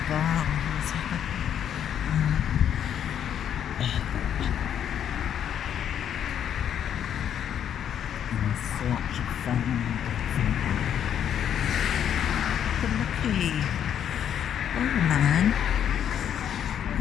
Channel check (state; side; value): quieter; right; 9.3 dB